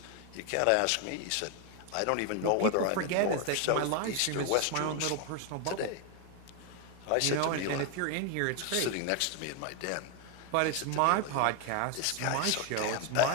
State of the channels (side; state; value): both; different; correlation 0.01